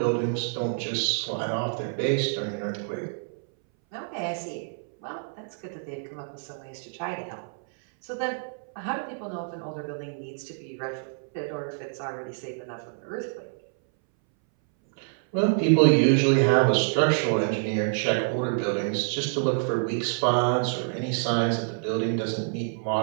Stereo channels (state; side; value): silent; left; 60 dB below the other